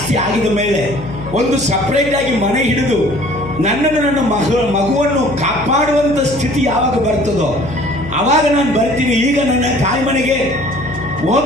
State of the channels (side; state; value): left; noise; hum, 12 dB below the sound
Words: ಆಗಿದ ಮೇಲೆ ಒಂದು ಸಪ್ರೇಟ್ ಆಗಿ ಮನೆ ಹಿಡಿದು ನನ್ನನ್ನು ನನ್ನ ಮಗುವನ್ನು ಕಾಪಾಡುವಂಥ ಸ್ಥಿತಿ ಯಾವಾಗ ಬರ್ತದೋ ಅವಾಗ ನಾನು ಬರ್ತೀನಿ. ಈಗ ನನ್ನ ತಾಯಿ ಮನೆಗೆ